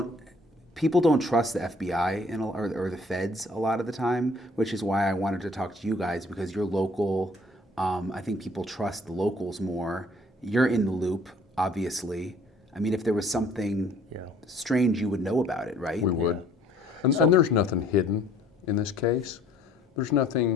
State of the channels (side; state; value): both; normal; correlation 0.58